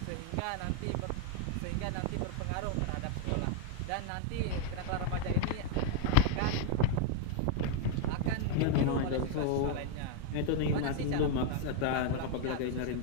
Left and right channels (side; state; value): both; different; correlation 0.00